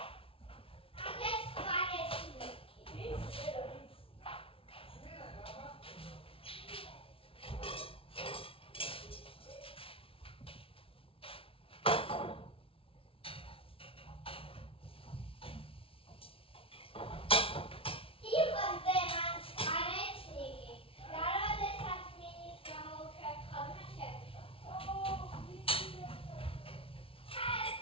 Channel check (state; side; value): late; right; 0.26 ms